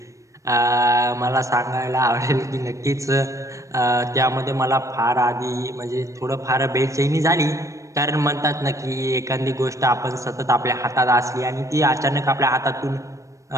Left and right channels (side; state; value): left; late; 0.15 ms